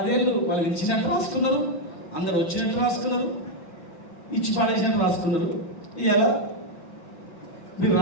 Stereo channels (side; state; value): right; late; 5.7 ms